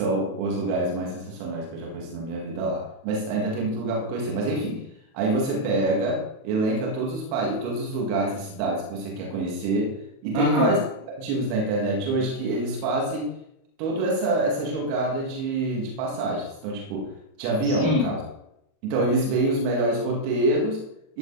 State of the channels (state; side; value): late; left; 37 ms